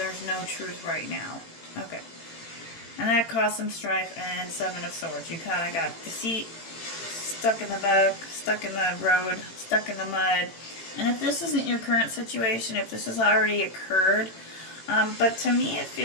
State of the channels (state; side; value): late; right; 18 ms